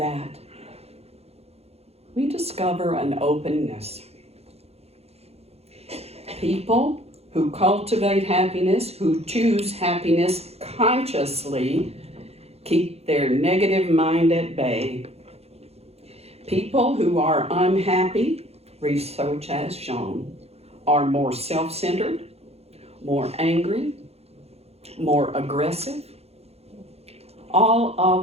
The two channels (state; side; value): late; left; 0.30 ms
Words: we discover an openness. People who cultivate happiness, who choose happiness consciously, keep their negative mind at bay. People who are unhappy, research has shown, are more self-centered, more angry, more aggressive. All